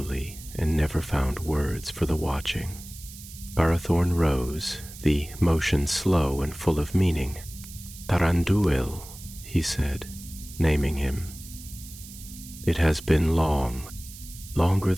and never found words for the watching. Barathorn rose, the motion slow and full of meaning. Taranduil, he said, naming him. It has been long, longer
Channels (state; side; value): noise; right; hiss, 16 dB below the sound